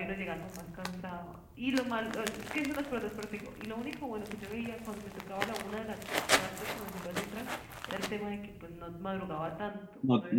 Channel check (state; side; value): identical; both; correlation 1.00